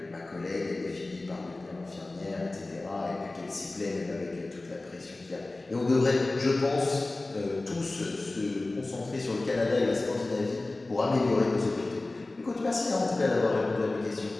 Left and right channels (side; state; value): right; quieter; 3.0 dB